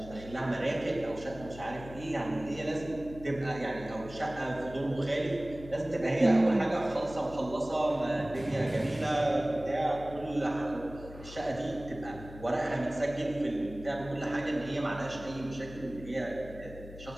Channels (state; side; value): noise; left; hum, 15 dB below the sound